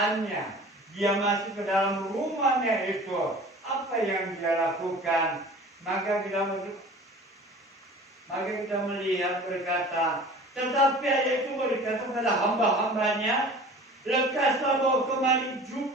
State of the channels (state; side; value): normal; both; correlation 0.43